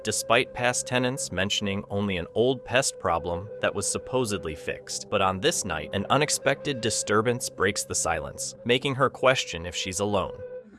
despite past tenants mentioning only an old pest problem that was supposedly fixed. But on this night, an unexpected disturbance breaks the silence, making her question if she's alone.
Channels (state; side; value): identical; both; correlation 1.00